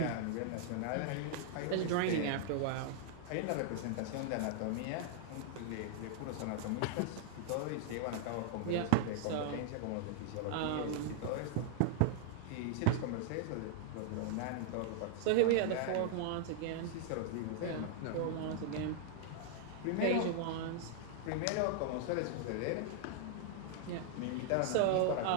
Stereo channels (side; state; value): both; different; correlation -0.01